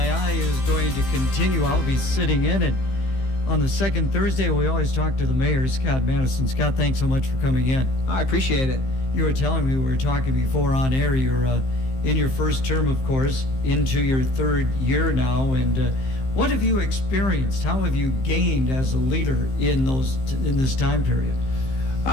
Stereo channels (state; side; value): late; right; 15 ms